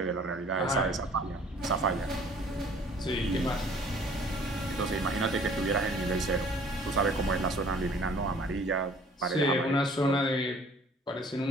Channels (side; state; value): both; normal; correlation 0.54